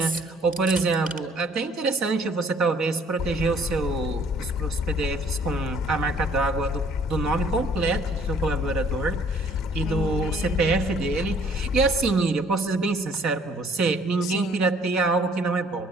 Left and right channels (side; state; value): both; normal; correlation 0.59